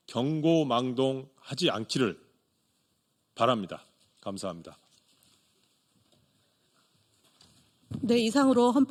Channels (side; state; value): both; identical; correlation 1.00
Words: 경고망동하지 않기를 바랍니다. 감사합니다. 네, 이상으로